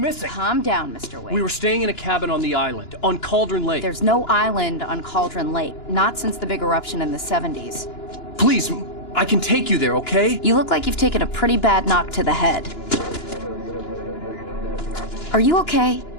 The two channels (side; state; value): right; late; 2.9 ms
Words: Calm down, Mr. Wake. We were staying in a cabin on the island, on Cauldron Lake. There's no island on Cauldron Lake. Not since the big eruption in the 70s. Please, I can take you there, okay? You look like you've taken a pretty bad knock to the head. Are you okay?